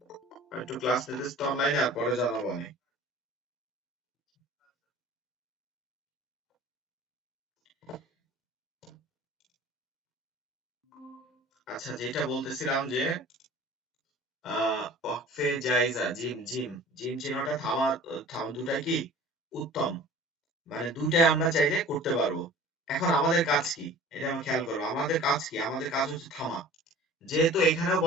আমি একটু ক্লাস নিতেছি তো অনলাইনে, আর পরে জানাবো না। আচ্ছা, যেটা বলতেছিলাম যে ওয়াকফে জায়েজা, জিম জিম জিম চিহ্নটা দুটাই কি উত্তম, মানে দুটাই আমরা চাইলে করতে পারবো। এখন আমাদের কাজ কি, এটা আমরা খেয়াল করবো, আমাদের কাজ কি, আমাদের কাজ হচ্ছে থামা। যেহেতু এখানেও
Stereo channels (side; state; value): both; normal; correlation 0.44